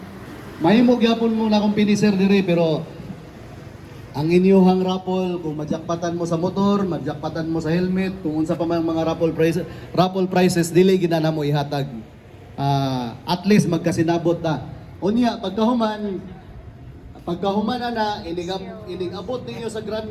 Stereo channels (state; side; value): identical; both; correlation 1.00